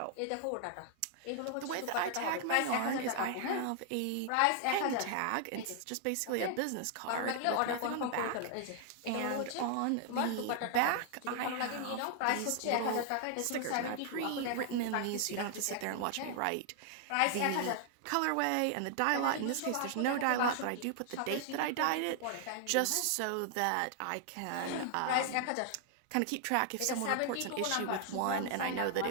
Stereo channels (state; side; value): different; both; correlation 0.00